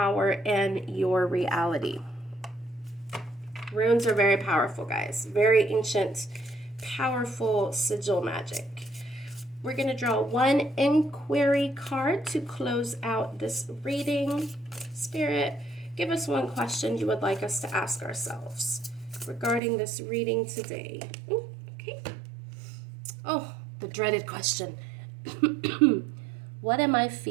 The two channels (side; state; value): left; drops out; at 19.6 s